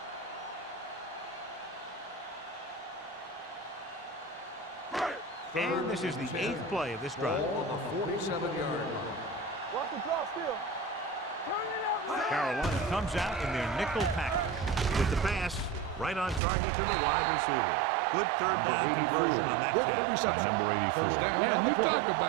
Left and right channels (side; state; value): left; drops out; at 16.4 s